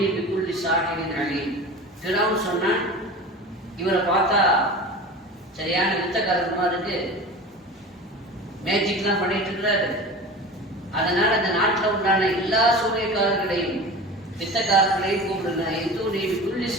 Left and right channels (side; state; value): both; normal; correlation 0.34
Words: பிக்குள்ளி சாஹிரின் அலீம். ஃபிரௌன் சொன்னான், இவரை பார்த்தா சரியான வித்தக்காரமா இருக்கு, மேஜிக்லாம் பண்ணிட்டு இருக்கிறாரு, அதனால அந்த நாட்டில் உண்டான எல்லா சூரியக்காரர்களையும் வித்தக்காரர்களையும் கூப்பிடுங்க, எந்தூர் பிக்குள்ளி